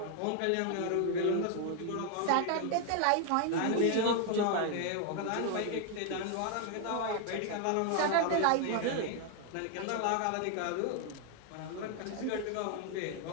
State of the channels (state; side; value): different; both; correlation 0.00